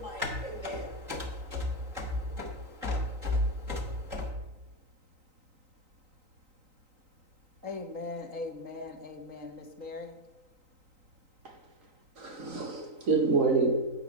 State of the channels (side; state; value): left; late; 3.9 ms